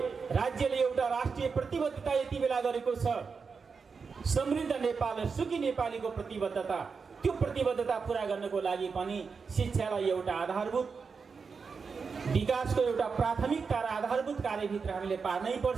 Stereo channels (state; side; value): quieter; left; 5.3 dB